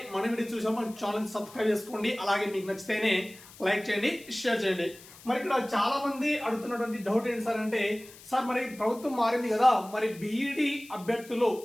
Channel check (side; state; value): left; noise; hiss, 20 dB below the sound